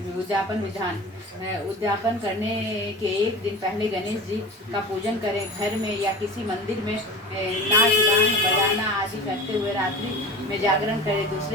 उद्यापन विधान। उद्यापन करने के एक दिन पहले गणेश जी का पूजन करें। घर में या किसी मंदिर में नाच गान बजाना आदि करते हुए रात्रि में जागरण करें।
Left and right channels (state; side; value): normal; both; correlation 0.34